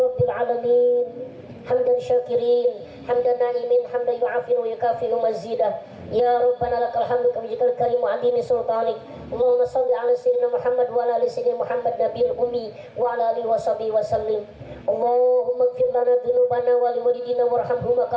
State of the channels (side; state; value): both; identical; correlation 1.00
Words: alamin. Hamdan syakirin, hamdan na'imin, hamdan yu'afin wa yukafi'u mazidah. Ya Rabbana lakal hamdu kama jikal karim wa adimi sultanik. Allahumma salli ala sayyidina Muhammad wa ala ali sayyidina Muhammad nabiyil ummi wa ala alihi wa sahbihi wa sallim. Allahumma ighfir lana dhunubana wa liwalidina warhamhuma